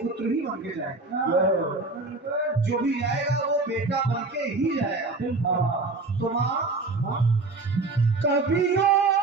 ही बन के जाएंगे, जो भी जाएगा वो बेटा बन के ही जाएगा। तो माँ कवियों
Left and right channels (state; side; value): quieter; left; 3.5 dB